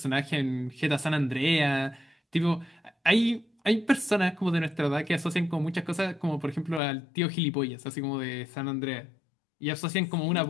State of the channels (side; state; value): right; drops out; at 6.8 s